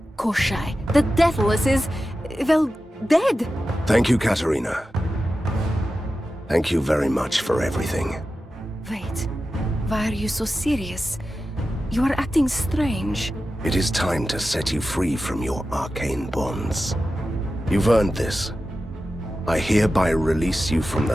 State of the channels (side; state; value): both; normal; correlation 0.93